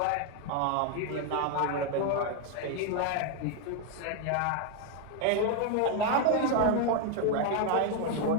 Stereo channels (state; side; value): different; both; correlation 0.01